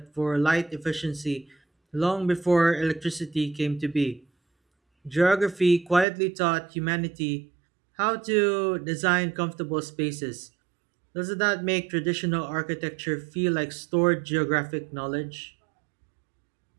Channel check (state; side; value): drops out; left; at 6.1 s